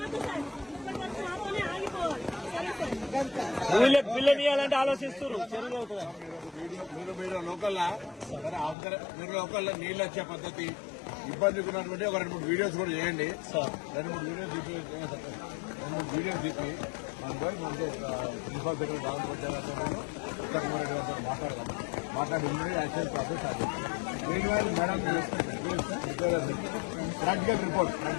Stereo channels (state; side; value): drops out; right; at 8.8 s